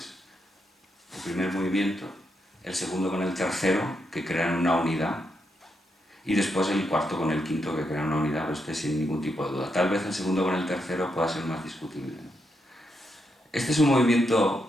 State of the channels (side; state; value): both; normal; correlation 0.81